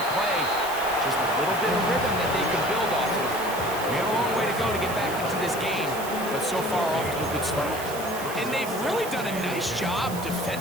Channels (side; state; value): right; noise; hiss, 11 dB below the sound